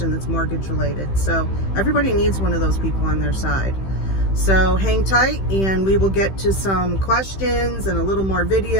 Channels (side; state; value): right; late; 15 ms